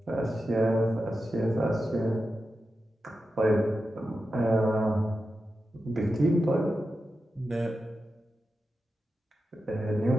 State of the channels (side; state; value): both; normal; correlation 0.91